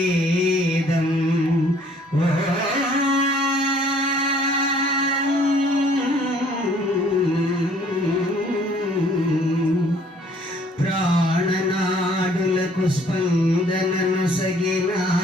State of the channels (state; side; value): normal; both; correlation 0.59